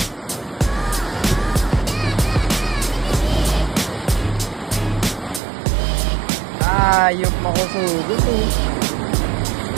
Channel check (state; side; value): drops out; left; at 5.4 s